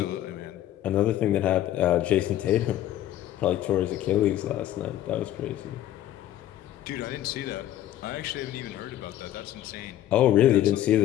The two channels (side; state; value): right; quieter; 12.9 dB